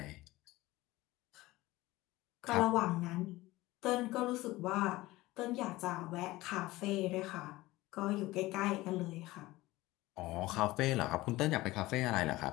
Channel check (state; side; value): quieter; right; 18.8 dB